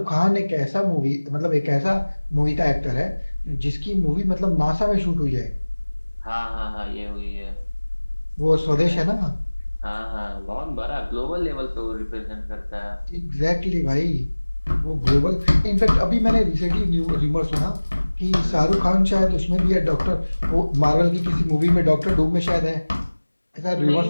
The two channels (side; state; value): both; inverted; correlation -1.00